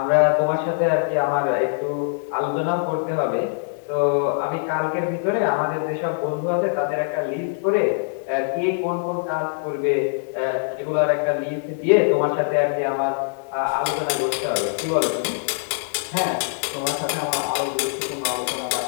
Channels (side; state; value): right; silent; 63 dB below the other